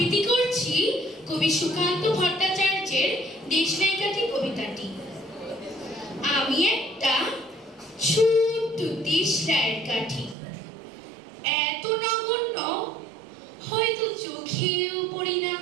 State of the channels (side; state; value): left; drops out; at 10.4 s